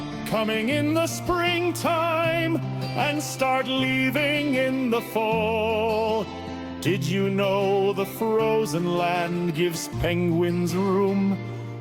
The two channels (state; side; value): identical; both; correlation 1.00